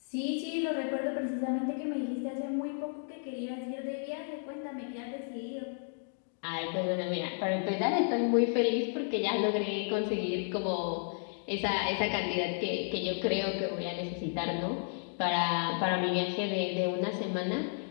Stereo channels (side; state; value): right; silent; digital silence